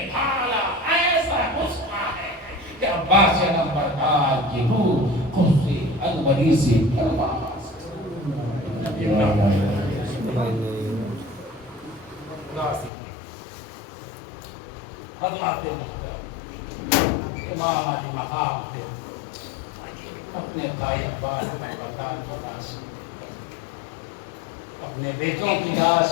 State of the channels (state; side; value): drops out; right; at 12.9 s